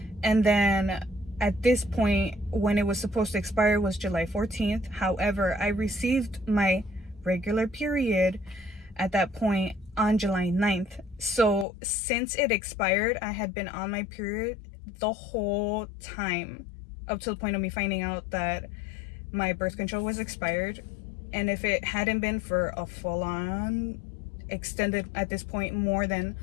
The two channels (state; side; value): drops out; right; at 11.7 s